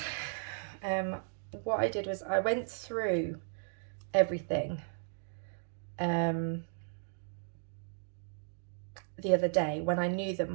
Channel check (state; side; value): silent; left; digital silence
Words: what I did was I went through everything the other day when I knew that